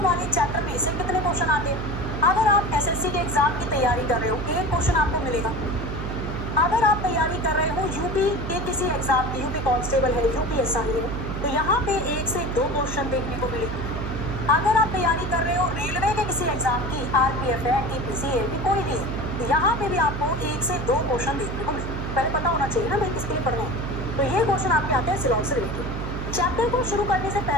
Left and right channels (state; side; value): noise; right; hum, 5 dB below the sound